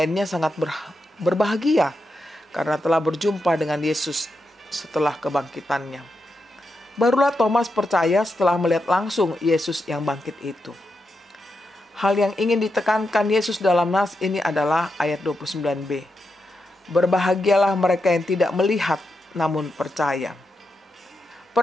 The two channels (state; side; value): normal; both; correlation 0.86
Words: sangat berbahagia karena telah berjumpa dengan Yesus setelah kebangkitannya. Barulah Thomas percaya setelah melihat langsung Yesus yang bangkit itu. Hal yang ingin ditekankan Yesus dalam nas ini adalah ayat 29b. Berbahagialah mereka yang tidak melihat namun percaya.